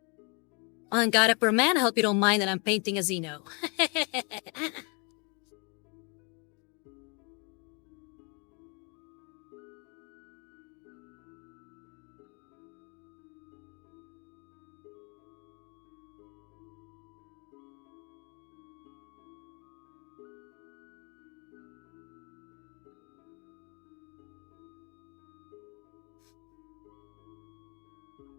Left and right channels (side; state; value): right; quieter; 33.3 dB